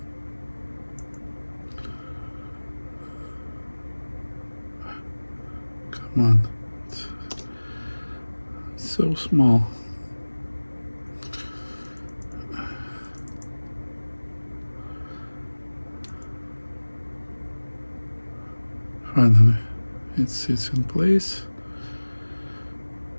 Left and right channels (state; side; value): inverted; both; correlation -1.00